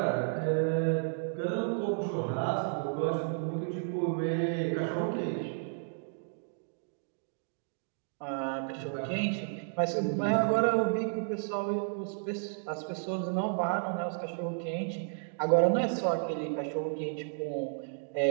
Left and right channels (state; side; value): silent; left; digital silence